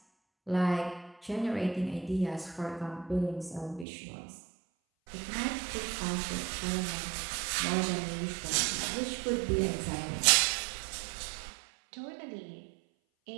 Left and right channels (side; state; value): left; drops out; at 3.9 s